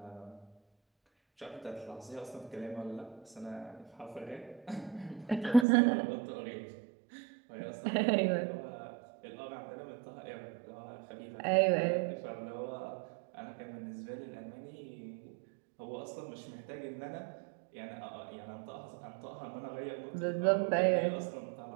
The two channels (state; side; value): drops out; left; at 5.7 s